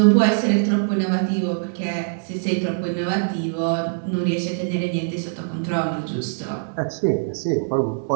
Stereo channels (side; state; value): left; silent; digital silence